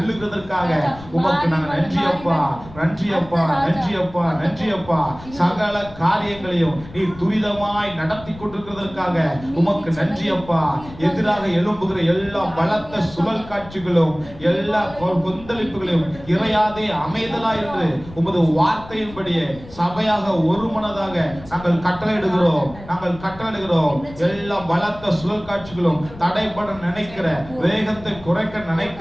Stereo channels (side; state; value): left; noise; rumble, 17 dB below the sound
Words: உமக்கு நாங்கள் நன்றியப்பா நன்றியப்பா நன்றியப்பா நன்றியப்பா. சகல காரியங்களையும் நீர் துரிதமாய் நடத்தி கொண்டிருக்கிறதற்காக உமக்கு நன்றியப்பா. எதிராக எழும்புகிற எல்லா பலத்த சுழல் காட்சிகளும் எல்லா கொந்தளிப்புகளையும் இறையாதே அமைதலா என்று உமது வார்த்தையின்படியே சபையாக ஒரு மனதாக நாங்கள் கட்டளையிடுகிறோம் நாங்கள் கட்டளையிடுகிறோம். எல்லா பலத்த சுழல் காட்சிகளும் தடைபட நினைக்கிற வேகத்தை குறைக்க